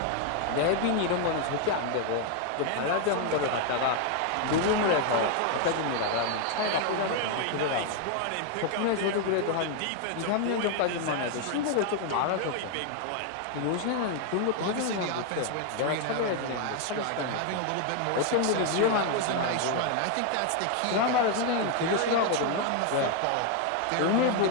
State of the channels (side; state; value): both; different; correlation 0.00